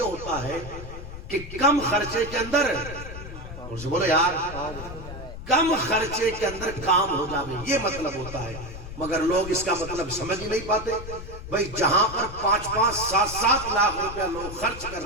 ہوتا ہے کہ کم خرچے کے اندر، اور سے بولو یار، کم خرچے کے اندر کام ہو جاوے، یہ مطلب ہوتا ہے۔ مگر لوگ اس کا مطلب سمجھ ہی نہیں پاتے۔ بھئی جہاں پر 5-5, 7-7 لاکھ روپیہ لوگ خرچ کر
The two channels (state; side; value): noise; left; rumble, 11 dB below the sound